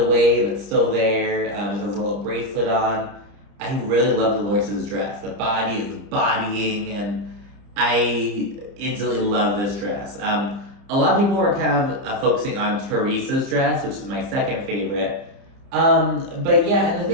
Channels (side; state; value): left; late; 30 ms